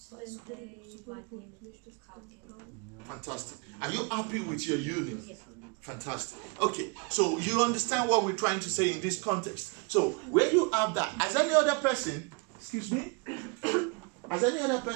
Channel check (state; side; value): quieter; left; 32.7 dB